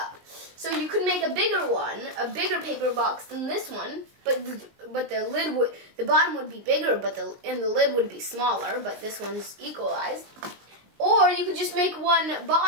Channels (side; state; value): left; late; 19 ms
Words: So you could make a bigger one, a bigger paper box than this one, but the bottom would be bigger, but the lid would be smaller, but this one's equalized. Or you could just make one